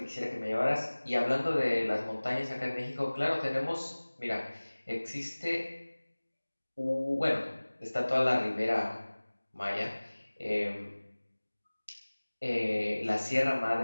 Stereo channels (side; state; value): both; inverted; correlation -1.00